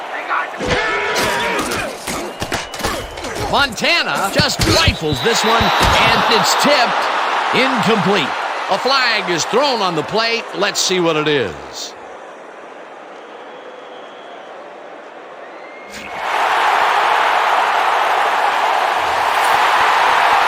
Montana just rifles this one, and it's tipped. Incomplete. A flag is thrown on the play. Let's see what it is.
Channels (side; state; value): both; identical; correlation 1.00